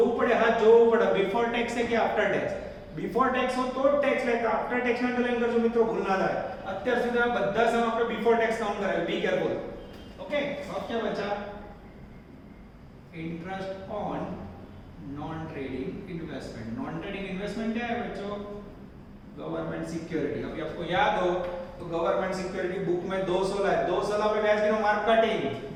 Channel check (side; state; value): both; identical; correlation 1.00